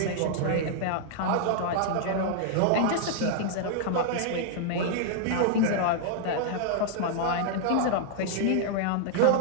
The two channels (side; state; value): both; different; correlation -0.01